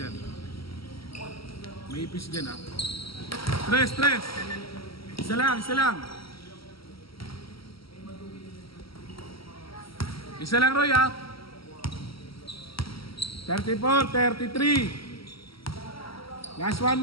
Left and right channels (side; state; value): right; late; 0.75 ms